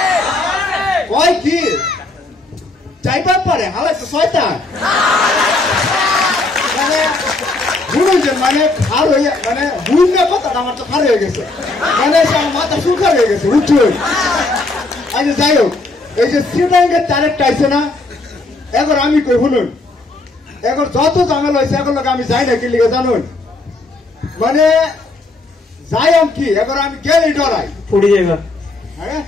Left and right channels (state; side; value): quieter; right; 3.2 dB